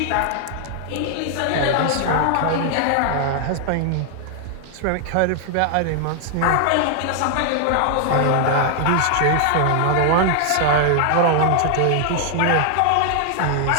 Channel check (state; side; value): different; both; correlation 0.00